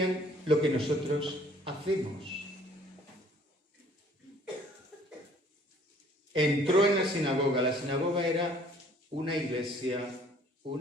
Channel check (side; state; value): both; normal; correlation 0.57